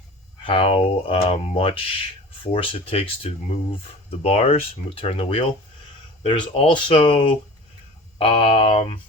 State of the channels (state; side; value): normal; both; correlation 0.39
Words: much force it takes to move the bars, turn the wheel. There's also